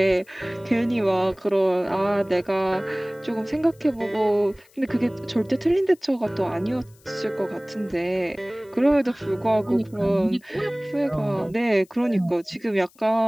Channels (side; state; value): left; noise; hiss, 30 dB below the sound